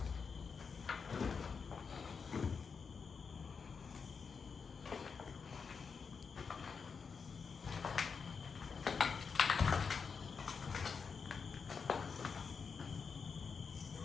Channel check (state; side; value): quieter; right; 5.6 dB